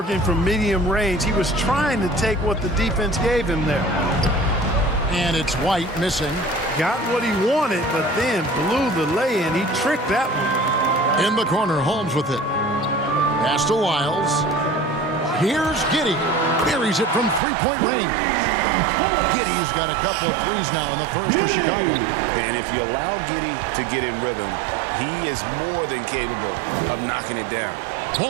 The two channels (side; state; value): left; drops out; at 17.4 s